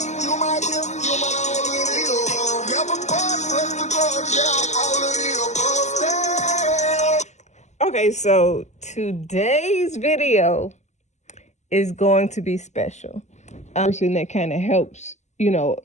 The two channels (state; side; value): late; right; 0.33 ms